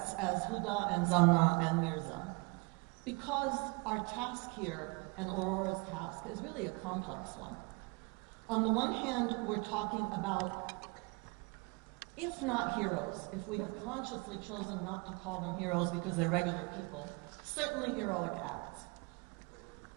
as Huda and Zanna and Mirza, because our task here, and Aurora's task, is really a complex one. On the one hand, we're talking about if not heroes, if we have consciously chosen not to call them heroes because they're regular people, certainly heroic acts.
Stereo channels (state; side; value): quieter; left; 29.0 dB